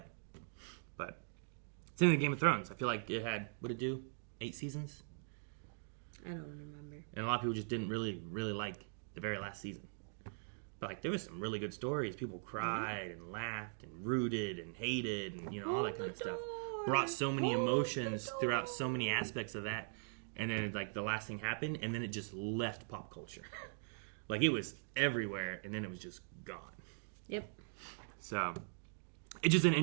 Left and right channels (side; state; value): left; silent; digital silence